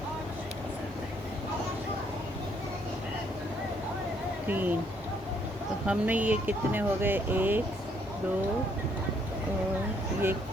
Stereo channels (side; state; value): both; normal; correlation 0.69